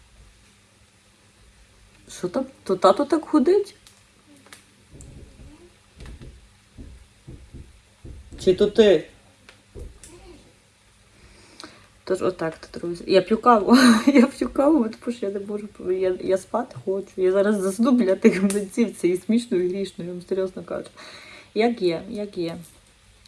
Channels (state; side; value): identical; both; correlation 1.00